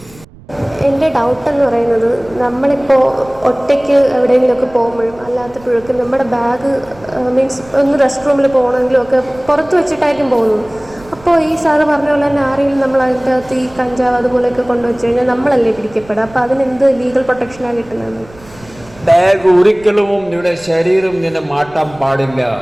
എൻ്റെ doubt എന്ന് പറയുന്നത്, നമ്മളിപ്പോൾ ഒറ്റയ്ക്ക് എവിടെയെങ്കിലുമൊക്കെ പോകുമ്പോഴും അല്ലാത്തപ്പോഴൊക്കെ നമ്മുടെ ബാഗ് മീൻസ് ഒന്ന് റെസ്റ്റ് റൂമിൽ പോകണമെങ്കിലും ഒക്കെ പുറത്ത് വെച്ചിട്ടായിരിക്കും പോകുന്നത്. അപ്പോൾ ഈ സാറ് പറഞ്ഞ പോലെ തന്നെ ആരെങ്കിലും നമ്മൾ അതിൻ്റെ അകത്ത് ഈ കഞ്ചാവ് അതുപോലെയൊക്കെ കൊണ്ടുവച്ച് കഴിഞ്ഞാൽ നമ്മളല്ലേ പിടിക്കപ്പെടുക? അപ്പോൾ അതിനെന്ത് ലീഗൽ പ്രൊട്ടക്ഷനാണ് കിട്ടുന്നത്? ബാഗ് ഒരിക്കലും നിങ്ങളുടെ ശരീരം നിന്നെ മാറ്റാൻ പാടില്ല.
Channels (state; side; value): noise; right; rumble, 23 dB below the sound